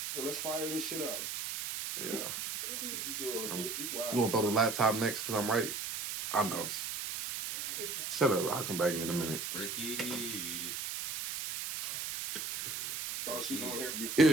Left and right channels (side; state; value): right; noise; hiss, 4 dB below the sound